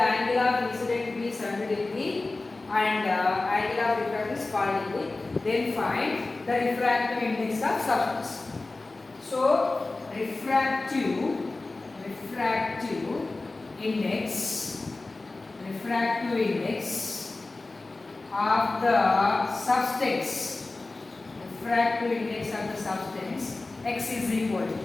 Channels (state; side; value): quieter; right; 3.3 dB